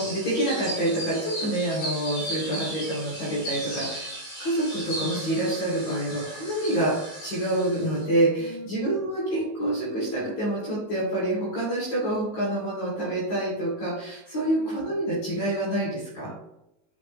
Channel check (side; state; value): right; late; 19 ms